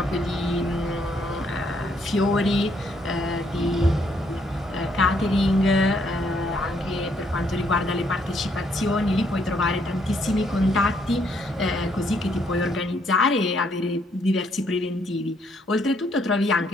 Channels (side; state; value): both; normal; correlation 0.71